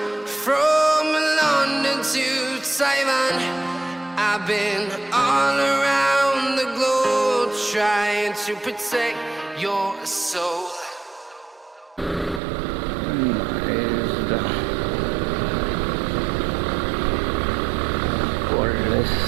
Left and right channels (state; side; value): drops out; left; at 12.4 s